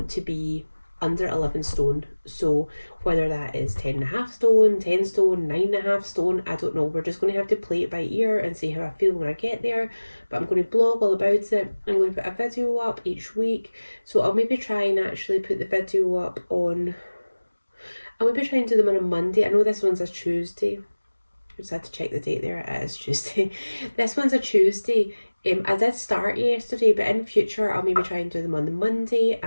to be under 11 stone. So whether that is 10.5 stone, 10 stone, 9.5 stone, I don't know. We're just going to have to play it by ear and see how I feel when I get there. But I'm going to blog all about it. I'm going to put a video up each week. So I'll maybe try and actually put the video up on, I'll maybe try and do them on a Monday. I know this one's a Tuesday. I just had to check the date there. It is Tuesday. This one's a Tuesday. I did start yesterday, but in future I'll maybe try and do them on the Monday,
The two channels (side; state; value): both; inverted; correlation -1.00